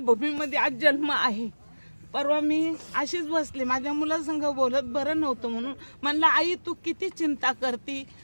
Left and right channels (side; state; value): both; inverted; correlation -1.00